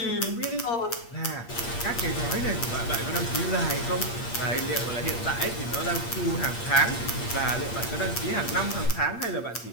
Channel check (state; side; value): late; right; 8.6 ms